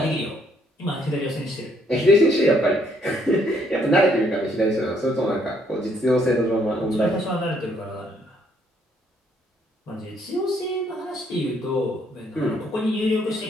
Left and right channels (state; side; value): normal; both; correlation 0.68